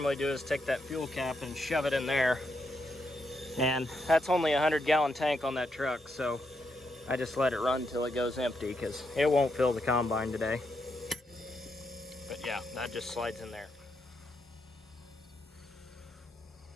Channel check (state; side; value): normal; both; correlation 0.81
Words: do is take that fuel cap and shove it in there. And that's only a 100-gallon tank on that truck, so I just let it run till it goes empty because it won't fill the combine today. But yeah, that just slides in there.